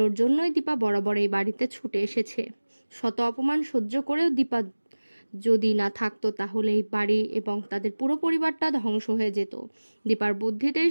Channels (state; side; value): inverted; both; correlation -1.00